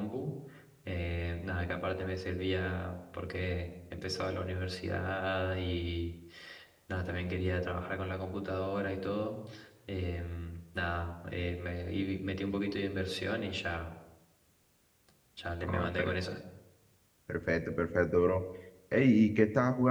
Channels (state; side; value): identical; both; correlation 1.00